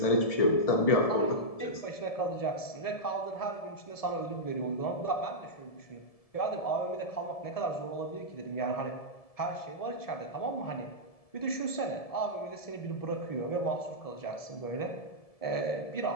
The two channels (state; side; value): late; right; 1.7 ms